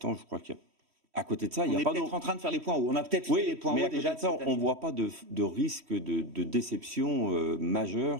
je crois qu'à côté de ça, il n'y a pas d'autre. On est peut-être en train de faire les points hauts. On a peut-être fait les points hauts déjà. De ça, on ne voit pas de risque de déception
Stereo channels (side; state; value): left; late; 3.1 ms